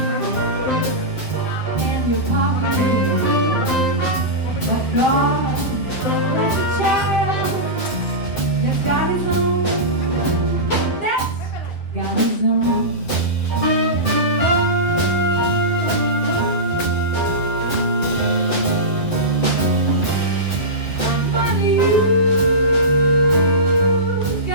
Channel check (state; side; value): late; right; 7.7 ms